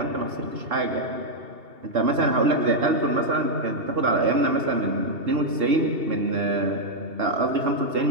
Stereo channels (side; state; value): left; late; 2.8 ms